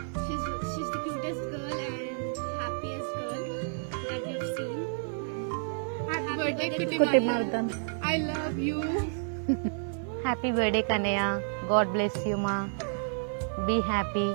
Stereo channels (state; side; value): silent; left; 58 dB below the other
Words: She's the cutest girl and happiest girl that we've seen. Happy birthday Kutti Mardhan. I love you. Happy birthday Kannayya. God bless you మా. Be happy.